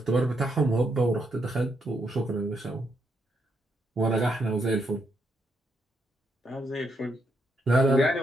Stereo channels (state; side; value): normal; both; correlation 0.78